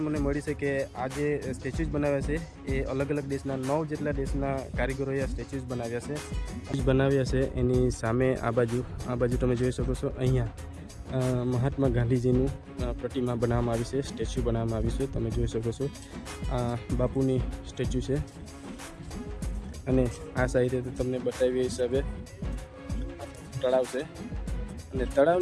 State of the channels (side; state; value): both; identical; correlation 1.00